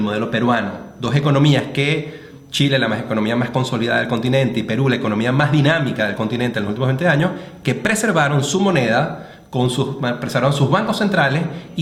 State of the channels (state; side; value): identical; both; correlation 1.00